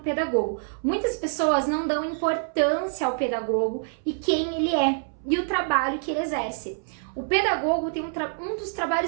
Muitas pessoas não dão importância ao pedagogo e quem ele é e o trabalho que ele exerce. O pedagogo tem um dos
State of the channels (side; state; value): left; silent; 61 dB below the other